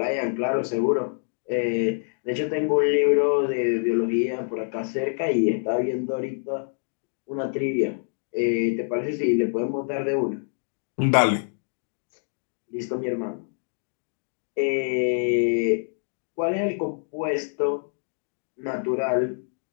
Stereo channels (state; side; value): silent; right; digital silence